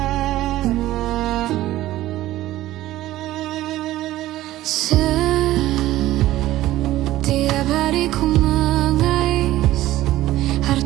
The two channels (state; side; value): quieter; left; 15.3 dB